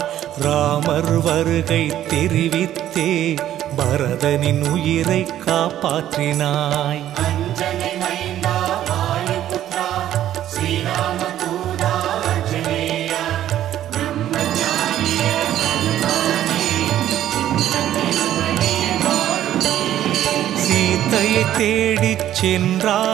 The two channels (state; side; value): quieter; left; 12.0 dB